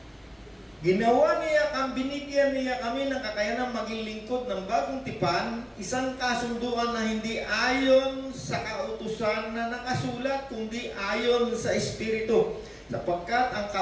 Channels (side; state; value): both; identical; correlation 1.00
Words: Ginawa niya binigyan niya kami ng kakayanang maging lingkod ng bagong tipan, isang kasunduan na hindi ayon sa kautusan na nakasulat, kundi ayon sa Espiritu. Sapagkat ang